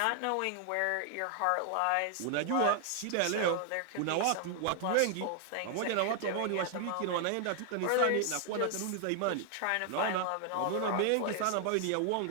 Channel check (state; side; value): different; both; correlation 0.00